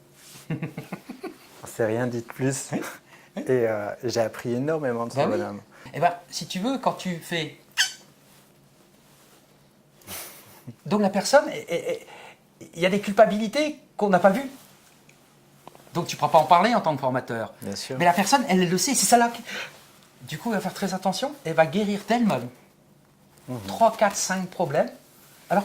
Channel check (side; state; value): both; identical; correlation 1.00